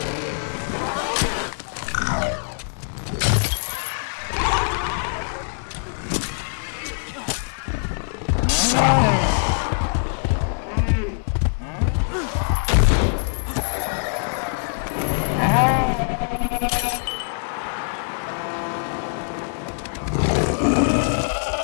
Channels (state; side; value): silent; right; 63 dB below the other